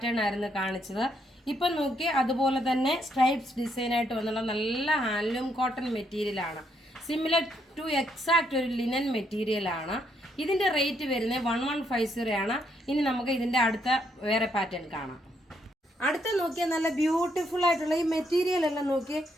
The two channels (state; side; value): normal; both; correlation 0.74